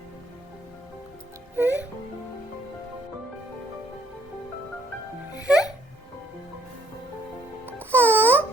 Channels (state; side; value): normal; both; correlation 0.66